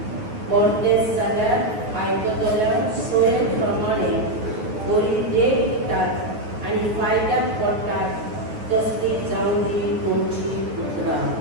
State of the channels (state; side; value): late; left; 9.4 ms